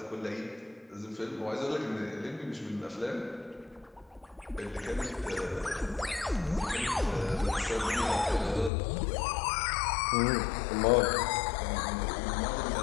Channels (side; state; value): right; drops out; at 8.7 s